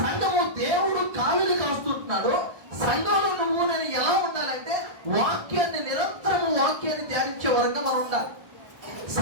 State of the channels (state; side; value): late; left; 1.4 ms